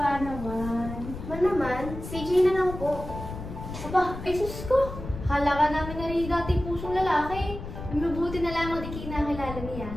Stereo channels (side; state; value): left; noise; rumble, 9 dB below the sound